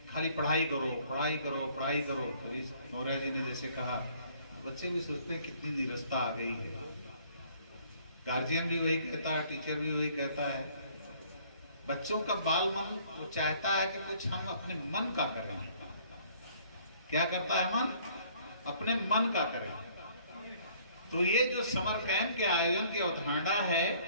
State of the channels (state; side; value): inverted; both; correlation -0.59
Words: खाली पढ़ाई करो पढ़ाई करो पढ़ाई करो, तो इस मौर्य जी ने जैसे कहा, बच्चे भी सोचते हैं कितनी निरस्ता आ गई है। गार्जियन भी वही कहता है, टीचर भी वही कहता है। बच्चों का बाल मन वो चाहता है कि कुछ हम अपने मन का करें। क्या करता है मन? अपने मन का करें। तो ये जो समर कैंप के आयोजन की अवधारणा